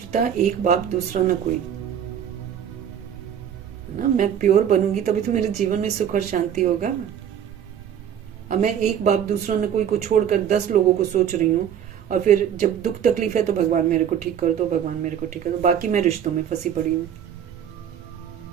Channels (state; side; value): quieter; left; 9.1 dB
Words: एक बाप दूसरा न कोई, ना। मैं प्योर बनूंगी तभी तो मेरे जीवन में सुख और शांति होगा। अब मैं एक बाप दूसरा न कोई को छोड़कर 10 लोगों को सोच रही हूँ, और फिर जब दुख तकलीफ है तो भगवान मेरे को ठीक कर दो, भगवान मेरे को ठीक कर दो, बाकी मैं रिश्तों में फंसी पड़ी हूँ।